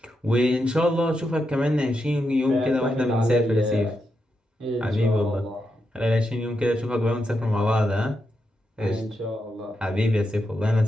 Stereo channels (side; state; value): both; normal; correlation 0.85